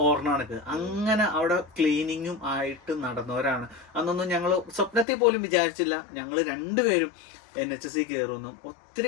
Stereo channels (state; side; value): drops out; right; at 5.1 s